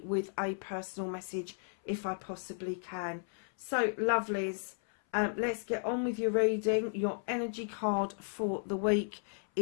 with a personal message if I possibly can. So, lovelies, let's get on with your reading. Your energy card for the week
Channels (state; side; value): silent; right; 55 dB below the other